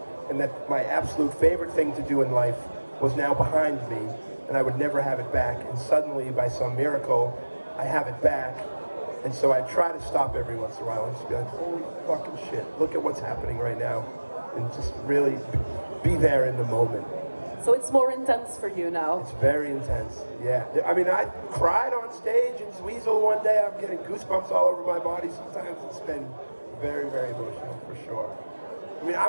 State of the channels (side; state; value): both; inverted; correlation -1.00